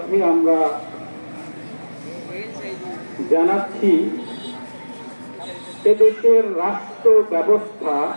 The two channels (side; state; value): both; inverted; correlation -1.00